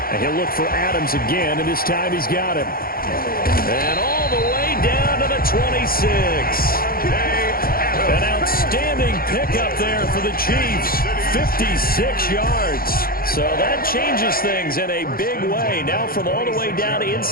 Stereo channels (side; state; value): right; late; 0.43 ms